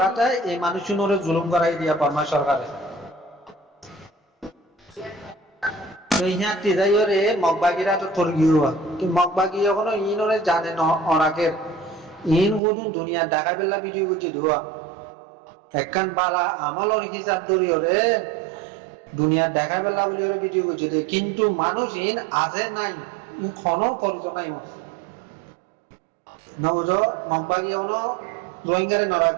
এই মানুষ নরে জুলুম করাই দিয়া বার্মা সরকারে তো ইহা তিজাইরে মগবাগিরা তো তোর গিয়া কি মগবাগি এখনো ইনরে জানে না অনাকের ইন গুদুন দুনিয়া ঢাকা বেলা ভিডিও করছে ধোয়া একখান বালা আমলর হিসাব ধরিওরে দুনিয়া দেখা বেলা বলি ওরে ভিডিও করছে কিন্তু মানুষ ইন আছে নাই ক্ষণ করছ নাই নবুঝ মগবাগি অন রোহিঙ্গারে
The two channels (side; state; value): left; drops out; at 12.6 s